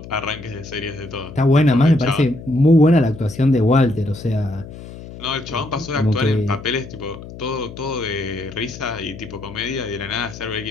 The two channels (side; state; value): left; noise; hum, 14 dB below the sound